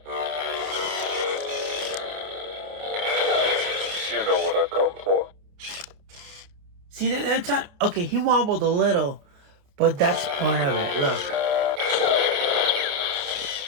You know what I've come for. See, there time. Okay, he wobbled a little, but that's part of it. Look.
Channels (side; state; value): left; late; 29 ms